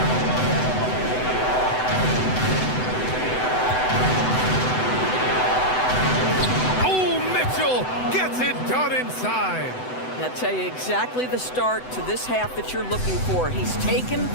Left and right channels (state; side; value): late; right; 7.9 ms